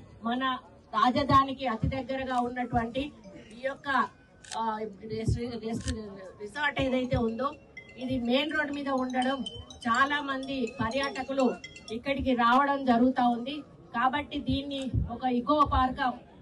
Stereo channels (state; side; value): identical; both; correlation 1.00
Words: మన రాజధానికి అతి దగ్గరగా ఉన్నటువంటి ఈ యొక్క రిసార్ట్ ఏదైతే ఉందో ఇది మెయిన్ రోడ్ మీద ఉండడం చాలా మంది పర్యాటకులు ఇక్కడికి రావడం జరుగుతా ఉంది. కాబట్టి దీన్ని ఒక ఇకో పార్క్